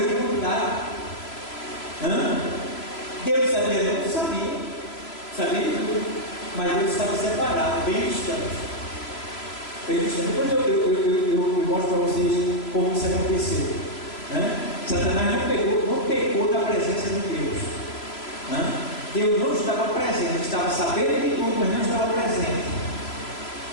quantidade. Deus sabia, não sabia. Sabia de tudo. Mas Deus estava separado, bem distante. Bem distante. Depois eu mostro para vocês como isso aconteceu. Satanás não pecou da presença de Deus. Deus não estava presente, estava sabendo de tudo, mas não estava presente.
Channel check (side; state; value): right; late; 3.0 ms